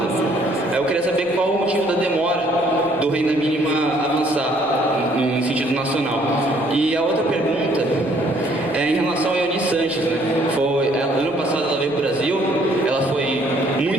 Aí eu queria saber qual o motivo da demora do renda mínima avançar no sentido nacional. E a outra pergunta é em relação a Ione Sanches, né? Ano passado ela veio para o Brasil, ela foi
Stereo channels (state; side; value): noise; right; rumble, 28 dB below the sound